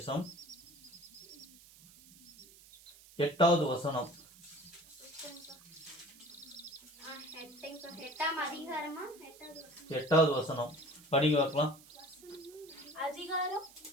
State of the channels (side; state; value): right; noise; hiss, 22 dB below the sound